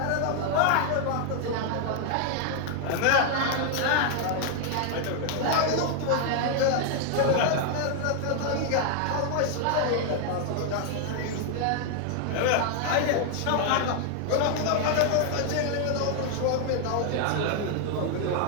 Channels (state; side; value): different; both; correlation 0.00